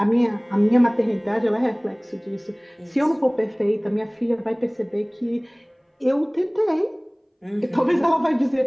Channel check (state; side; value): identical; both; correlation 1.00